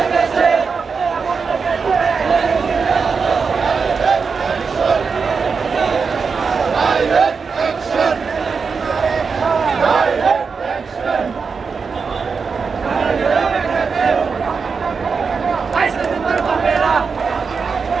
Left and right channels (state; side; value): quieter; left; 5.3 dB